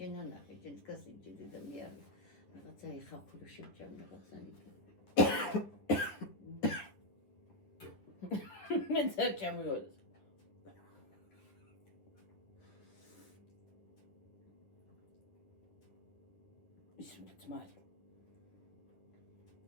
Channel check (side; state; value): right; late; 10 ms